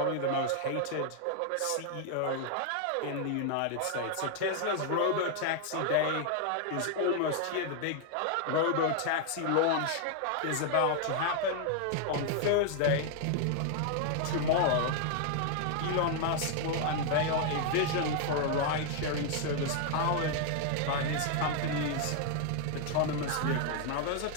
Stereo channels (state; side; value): different; both; correlation 0.00